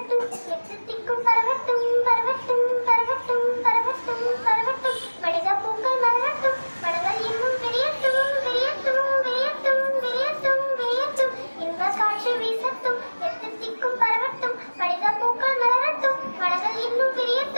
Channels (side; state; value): both; inverted; correlation -1.00